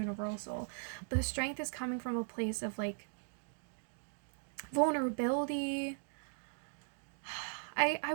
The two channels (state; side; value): silent; left; digital silence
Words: But the strength is coming from a place of like vulnerability. I